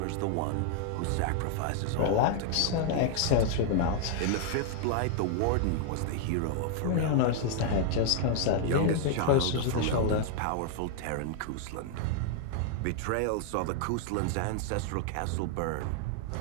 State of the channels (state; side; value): different; both; correlation 0.00